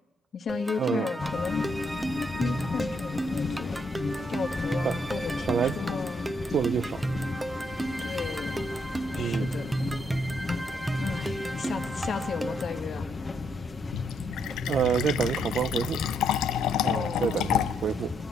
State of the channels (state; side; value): normal; both; correlation 0.74